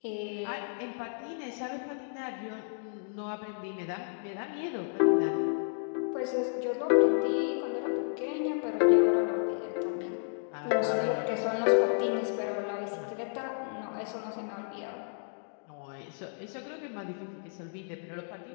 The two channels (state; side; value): silent; right; digital silence